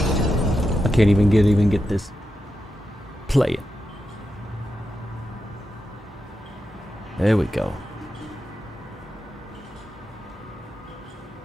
can't even get this. Play it. There we go.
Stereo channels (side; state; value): both; normal; correlation 0.88